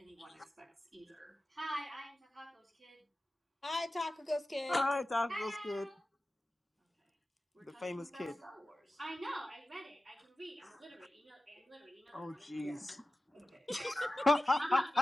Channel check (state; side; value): normal; both; correlation 0.95